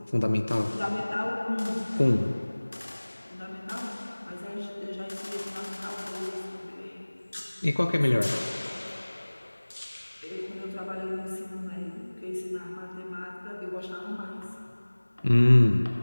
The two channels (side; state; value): both; inverted; correlation -1.00